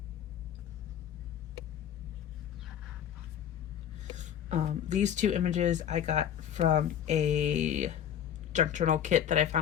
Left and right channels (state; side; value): quieter; right; 9.7 dB